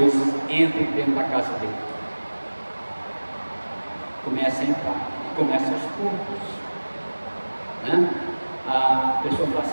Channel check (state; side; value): inverted; both; correlation -1.00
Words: entrem dentro da casa dele. Começa a entrar, começa aos poucos. Né? A pessoa